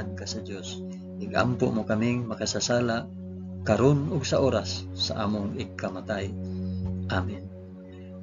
ka sa Dios. Igampo mo kaming makasasala karon ug sa oras sa among ikamatay. Amen.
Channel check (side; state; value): both; identical; correlation 1.00